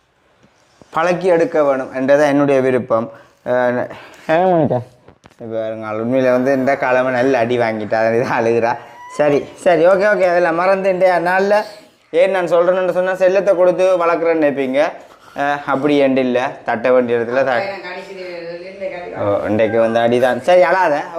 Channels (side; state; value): both; identical; correlation 1.00